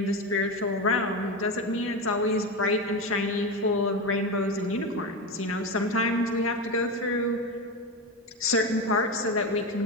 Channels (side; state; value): both; normal; correlation 0.17